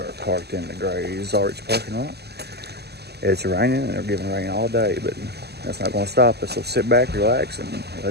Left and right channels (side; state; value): left; late; 0.47 ms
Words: parked in the Gorge parking lot. It's raining and they're giving rain all day, but that's not going to stop us. So sit back, relax, and